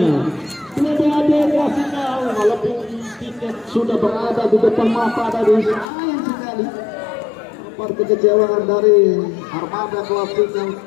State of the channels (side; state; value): right; drops out; at 5.9 s